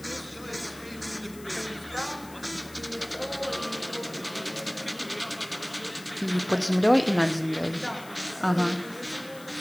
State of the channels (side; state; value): left; noise; hiss, 19 dB below the sound